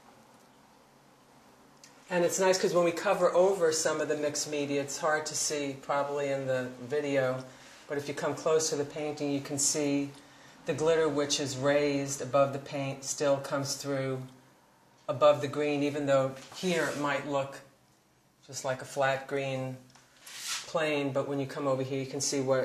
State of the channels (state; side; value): identical; both; correlation 1.00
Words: And it's nice because when we cover over some of the mixed media, it's hard to see probably in the video, but if you come close to the painting, you can see the glitter, which is raised above the paint, still comes through above the green, even though here it might look just like a flat green plane, but when you come over here, you can see